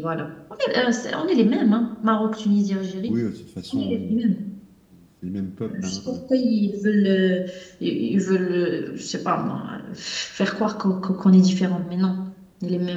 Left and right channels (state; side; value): identical; both; correlation 1.00